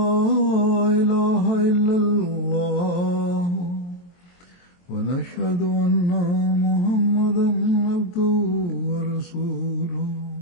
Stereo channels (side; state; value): right; late; 23 ms